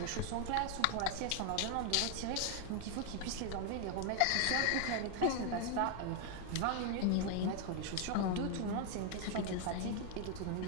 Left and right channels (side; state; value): both; different; correlation 0.00